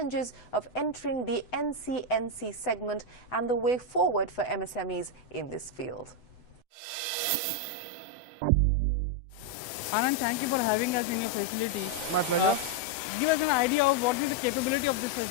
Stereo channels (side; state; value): right; late; 8.0 ms